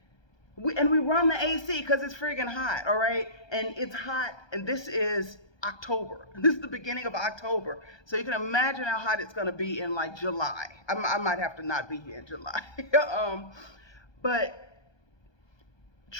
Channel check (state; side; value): late; right; 1.2 ms